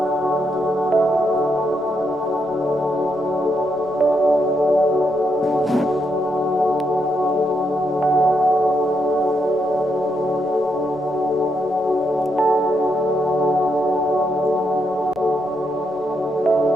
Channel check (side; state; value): right; noise; rumble, 28 dB below the sound